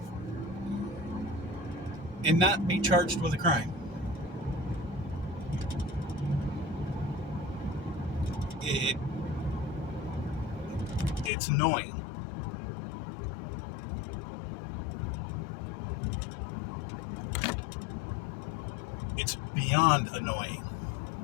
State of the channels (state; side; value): drops out; right; at 11.3 s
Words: and not be charged with a crime. It's annoying. It's beyond annoying.